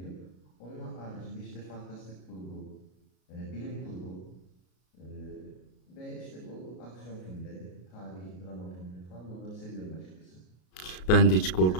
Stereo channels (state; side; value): late; right; 33 ms